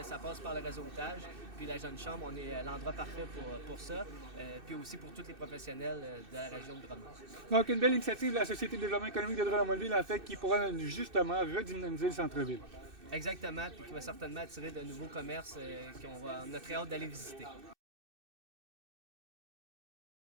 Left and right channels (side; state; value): left; late; 2.6 ms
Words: ça passe par le réseautage. Puis la Jeune Chambre, on est l'endroit parfait pour ça. Puis aussi pour tous les professionnels de la région de Drummond. Donc, une belle initiative de la Société de développement économique de Drummondville, en fait, qui pourra justement redynamiser le centre-ville. Exactement, puis qui va certainement attirer de nouveaux commerces qu'on a très hâte d'aller visiter.